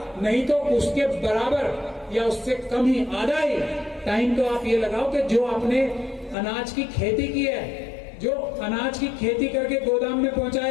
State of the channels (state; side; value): drops out; right; at 6.4 s